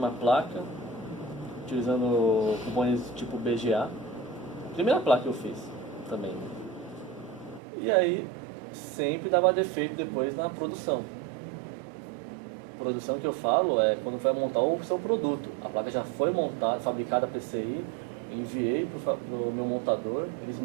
placa, utilizando componentes tipo BGA. Primeira placa que eu fiz também. E aí, sempre dava defeito depois na produção. Produção que eu falo é quando vai montar o seu produto. A placa já foi montada, fabricada a PCI, enviei para o meu montador, eles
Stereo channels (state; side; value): drops out; left; at 7.6 s